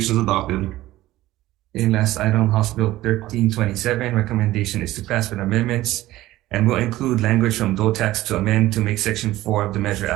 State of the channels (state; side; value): quieter; left; 16.2 dB